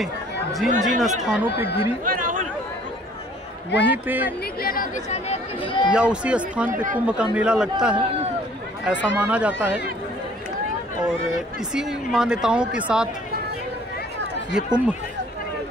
जिन जिन स्थानों पे गिरी वहीं पे या उसी स्थान पे कुंभ का मेला लगता है, ऐसा माना जाता है। और इसी मान्यताओं के साथ ये कुंभ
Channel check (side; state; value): both; normal; correlation 0.56